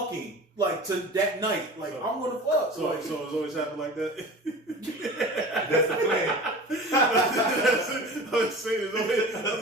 like to that night. Like I'm gonna fuck. So it's always happened like that. That's the plan. I'm saying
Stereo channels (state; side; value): normal; both; correlation 0.37